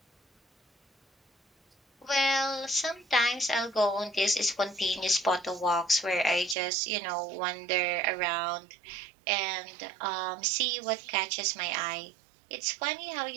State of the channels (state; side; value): drops out; left; at 6.6 s